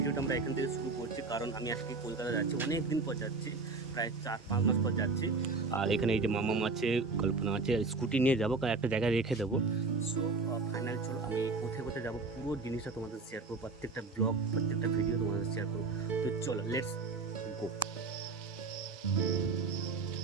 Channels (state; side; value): quieter; left; 4.0 dB